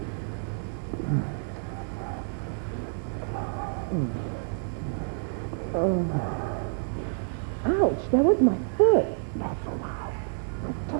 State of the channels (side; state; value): left; silent; 58 dB below the other